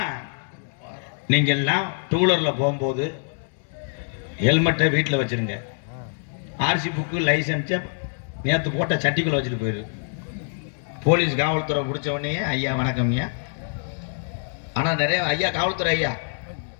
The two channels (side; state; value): right; silent; 62 dB below the other